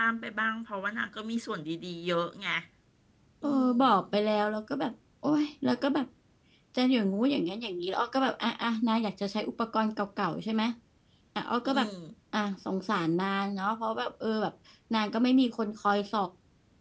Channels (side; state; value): both; identical; correlation 1.00